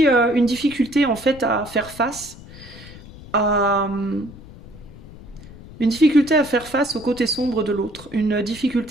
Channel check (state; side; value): noise; left; rumble, 18 dB below the sound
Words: une difficulté en fait à faire face à... Une difficulté à faire face au côté sombre de l'autre, une